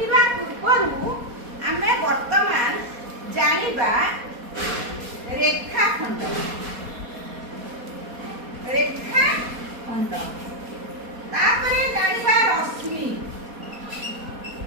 पूर्वरु हमें वर्तमान जानिबा रेखाखंड तापरे जानिबा रश्मि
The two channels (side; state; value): left; late; 4.2 ms